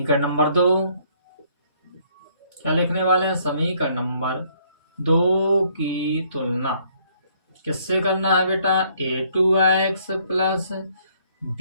नंबर 2, क्या लिखने वाले हैं, समीकरण नंबर 2 की तुलना किससे करना है बेटा, a2x plus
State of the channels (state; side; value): inverted; both; correlation -0.66